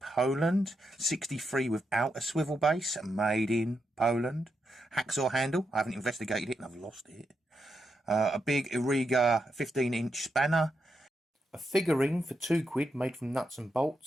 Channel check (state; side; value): normal; both; correlation 0.83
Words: 63 without a swivel base, made in Poland. Hacksaw handle, I haven't investigated it and I've lost it. A big Irriga 15-inch spanner. A figurine for £2 made from nuts and